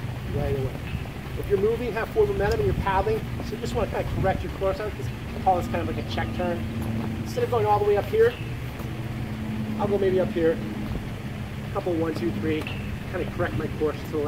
right away. If you're moving, have forward momentum, and you're paddling, so you just want to kind of correct your course. I call this kind of like a check turn. Instead of going all the way up here, I'll go maybe up here. A couple, 1, 2, 3. Kind of correct my course to the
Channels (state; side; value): identical; both; correlation 1.00